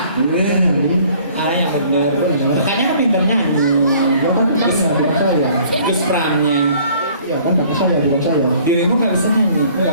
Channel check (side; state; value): both; inverted; correlation -0.56